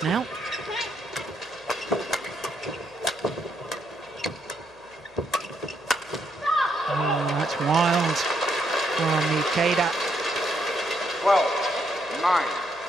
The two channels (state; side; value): noise; left; hum, 30 dB below the sound